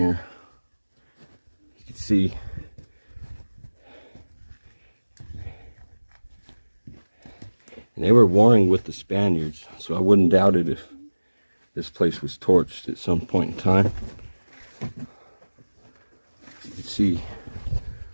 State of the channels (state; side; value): inverted; both; correlation -1.00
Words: You can see and they were warring with the Spaniards, so I wouldn't doubt it if this place was torched at some point in time. You can see